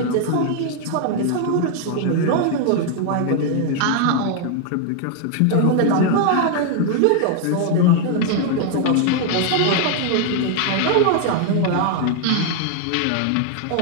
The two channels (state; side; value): different; both; correlation 0.00